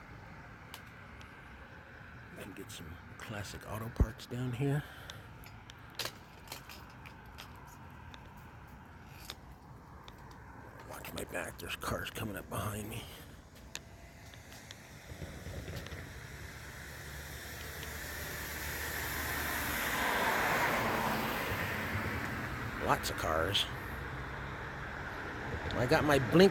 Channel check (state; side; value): identical; both; correlation 1.00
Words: You can get some classic auto parts down here. Watch my back, there's cars coming up behind me. Lots of cars. I got my